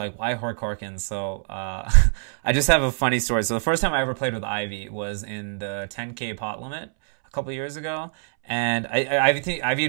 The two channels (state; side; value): silent; left; 62 dB below the other